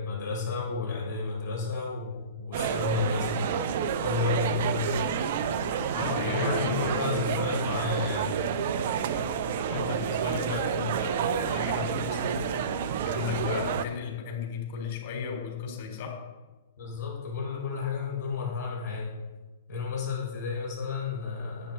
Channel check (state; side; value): inverted; both; correlation -0.34